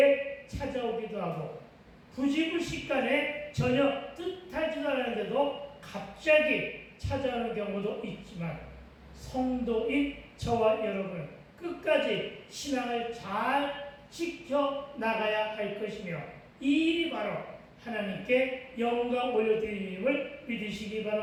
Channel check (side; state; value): both; identical; correlation 1.00